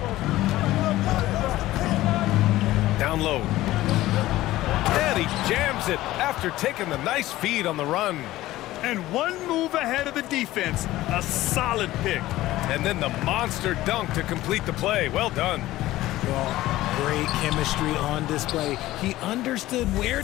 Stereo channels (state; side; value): quieter; right; 16.2 dB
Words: Down low. And he jams it after taking the nice feed on the run. And one move ahead of the defense. A solid pick. And then the monster dunk to complete the play. Well done. Well, great chemistry on display. He understood where